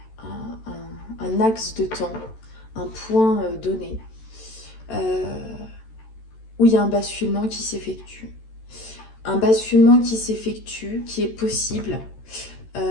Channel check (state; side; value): late; right; 13 ms